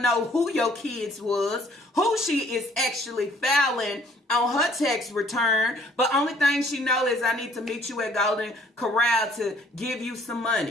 know who your kids was, who she is actually filing on her tax return, but only thing she know is I need to meet you at Golden Corral to give you some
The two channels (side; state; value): both; normal; correlation 0.59